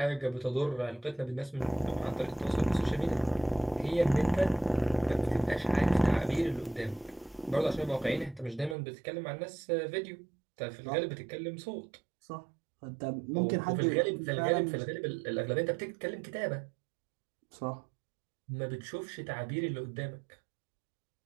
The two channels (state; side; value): drops out; left; at 8.8 s